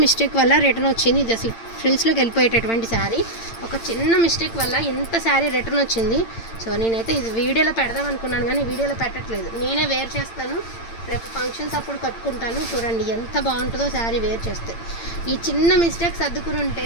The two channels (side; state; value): right; late; 8.8 ms